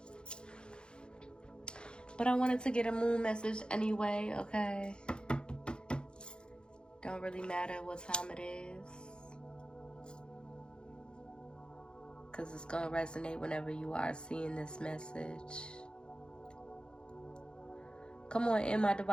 But I wanted to get a moon message anyway, okay? Don't really matter what time it is, because it's going to resonate whenever you are seeing this message. Come on in, my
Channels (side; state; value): right; late; 0.050 ms